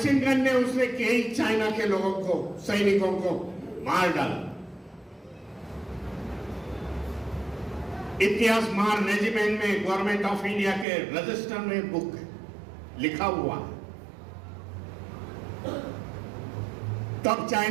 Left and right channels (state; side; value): drops out; left; at 10.9 s